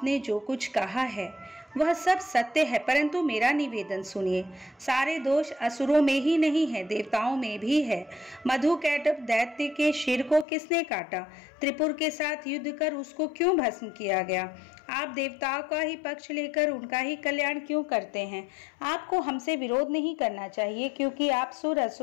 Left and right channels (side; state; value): right; drops out; at 10.5 s